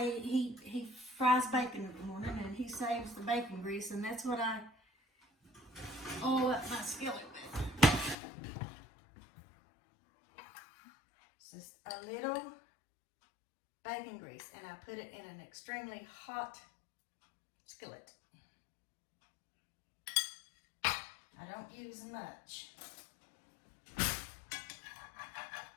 he fries bacon in the morning and he saves the bacon grease, and that's what I oil up my skillet with. It's just a little bacon grease, and I put it in an extremely hot skillet. I don't use much.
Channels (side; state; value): right; drops out; at 8.2 s